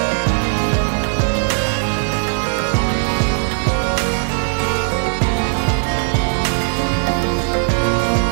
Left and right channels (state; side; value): silent; left; digital silence